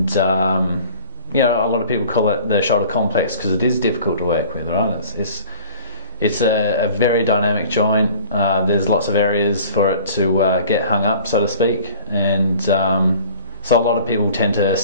you know, a lot of people call it the shoulder complex because it is difficult to work with, right? It's a very dynamic joint. There's lots of areas for it to get hung up, so to speak, and so a lot of people tend to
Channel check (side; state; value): both; inverted; correlation -0.47